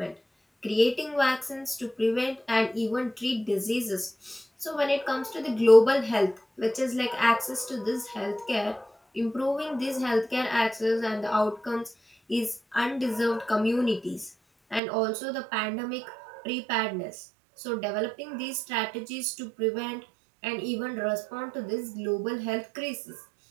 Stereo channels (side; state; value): left; drops out; at 14.8 s